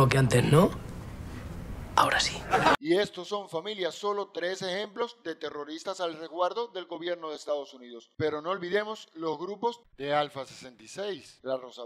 que antes, ¿no? Ahora sí. Y estos son, familia, solo 3 ejemplos de terroristas al resguardo del gobierno de Estados Unidos. Pero no olvidemos los grupos de Alfa 66, la Rosa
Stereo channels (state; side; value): identical; both; correlation 1.00